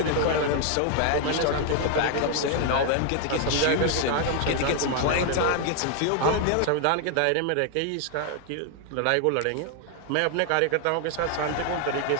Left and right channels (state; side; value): different; both; correlation 0.00